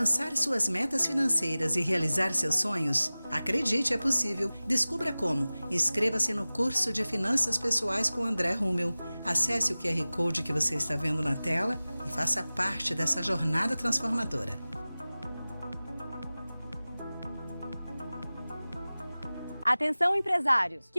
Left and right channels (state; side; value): inverted; both; correlation -0.98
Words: suas metas financeiras e realizar seus sonhos? Acredite, é possível. Descubra como. Inscreva-se no curso de Finanças Pessoais com André Rummel. Acesse o QR Code que você está vendo na tela e faça parte dessa jornada transformadora. Atenção, empresários!